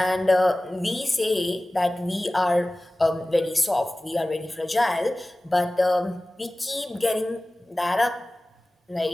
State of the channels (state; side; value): normal; both; correlation 0.97